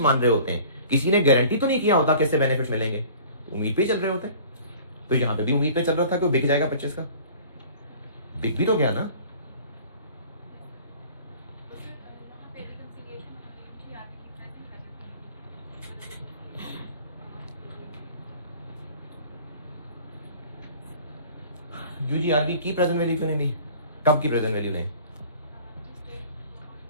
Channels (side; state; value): both; inverted; correlation -0.47